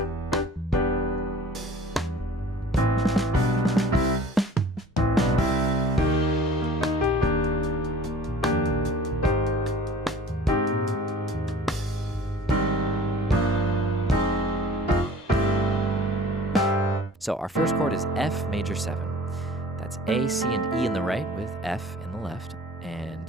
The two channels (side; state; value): both; normal; correlation 0.47